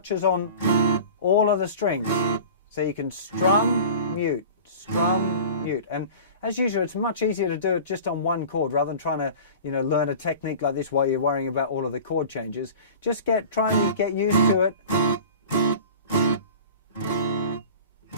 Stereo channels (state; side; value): inverted; both; correlation -0.39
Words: on all of the strings. So you can strum, mute, and as usual, it's much easier to do it just on one chord rather than trying to, you know, learn a technique like this while you're worrying about all of the chord changes. Just try and get used to it.